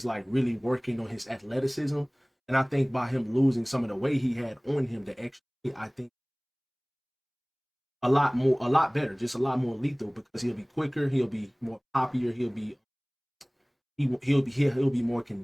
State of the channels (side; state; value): both; identical; correlation 1.00